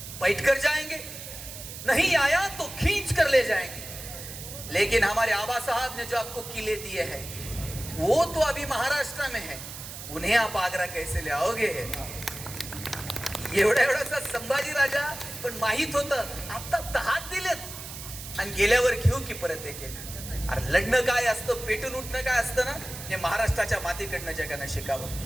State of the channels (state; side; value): noise; right; hiss, 11 dB below the sound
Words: बैठ कर जाएंगे, नहीं आया तो खींच कर ले जाएंगे, लेकिन हमारे आबा साहब ने जो आपको किले दिए हैं वो तो अभी महाराष्ट्र में है, उन्हें आप आगरा कैसे ले आओगे? एवढासा संभाजी राजा, पण माहित होतं आता 10 दिलेत आणि गेल्यावर घेऊ की परत एक. अरे लढणं काय असतं, पेटून उठणं काय असतं ना, हे महाराष्ट्राच्या मातीकडनं जगानं